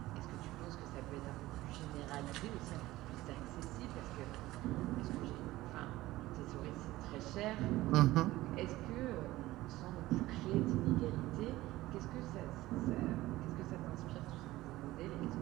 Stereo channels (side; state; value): left; quieter; 17.2 dB